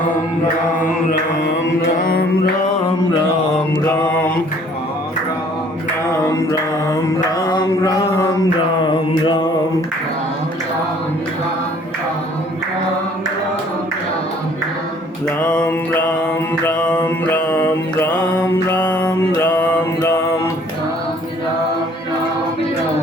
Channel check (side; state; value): both; normal; correlation 0.57